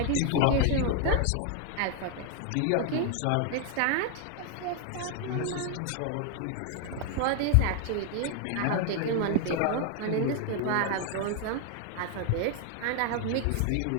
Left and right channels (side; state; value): both; different; correlation 0.00